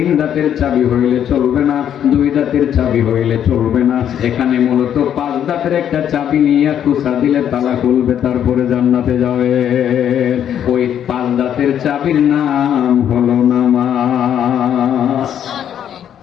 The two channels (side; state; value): right; quieter; 9.6 dB